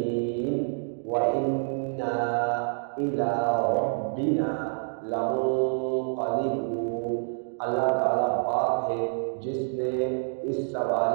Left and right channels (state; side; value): silent; left; digital silence